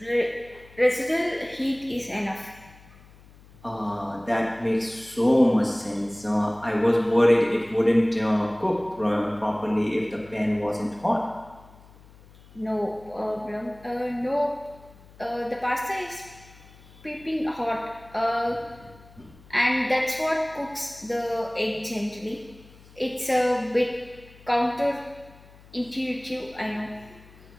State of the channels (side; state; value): left; noise; hum, 23 dB below the sound